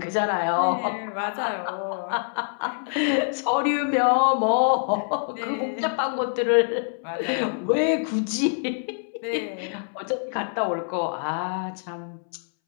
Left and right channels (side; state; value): right; silent; 61 dB below the other